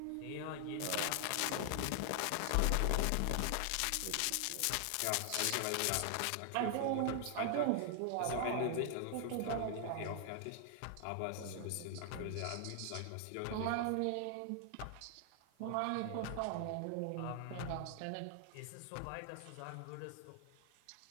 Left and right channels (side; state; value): both; different; correlation 0.00